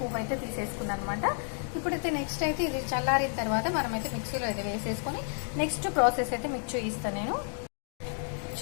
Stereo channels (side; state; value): right; silent; 57 dB below the other